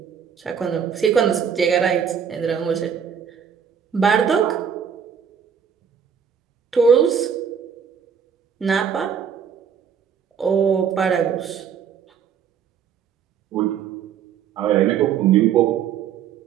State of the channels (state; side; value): quieter; left; 7.6 dB